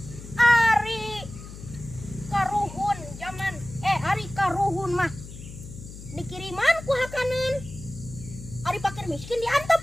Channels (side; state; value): left; noise; hum, 13 dB below the sound